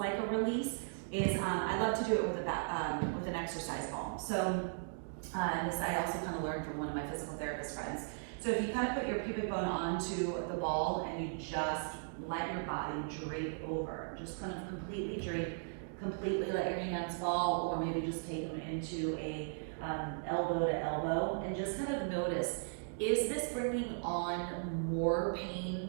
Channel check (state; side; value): silent; left; digital silence